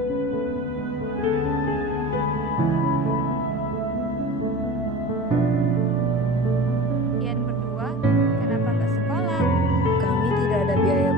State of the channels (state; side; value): normal; both; correlation 0.36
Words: Kalian berdua, kenapa nggak sekolah? Kami tidak ada biaya